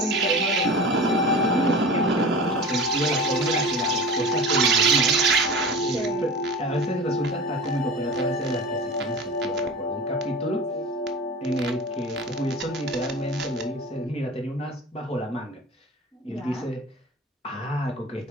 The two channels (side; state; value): both; normal; correlation 0.34